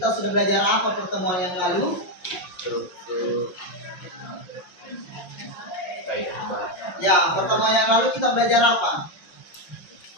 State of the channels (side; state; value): right; late; 5.7 ms